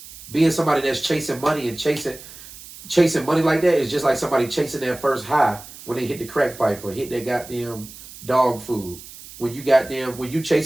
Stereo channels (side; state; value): right; noise; hiss, 17 dB below the sound